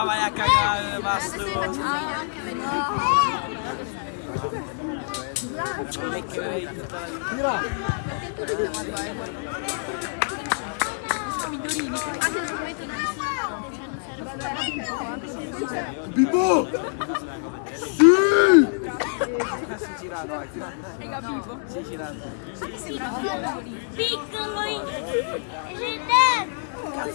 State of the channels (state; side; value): silent; right; 61 dB below the other